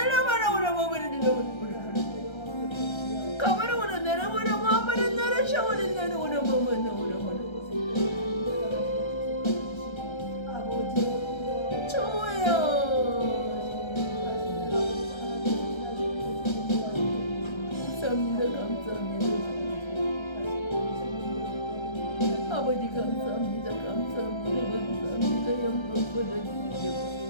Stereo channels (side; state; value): right; late; 1.3 ms